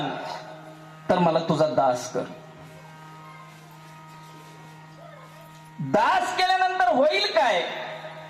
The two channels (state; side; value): identical; both; correlation 1.00